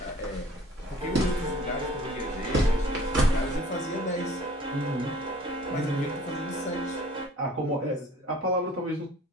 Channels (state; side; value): normal; both; correlation 0.51